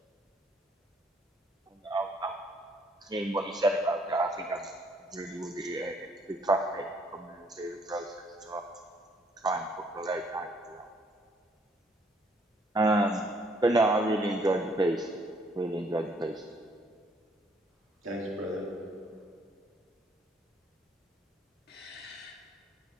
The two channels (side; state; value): both; normal; correlation 0.66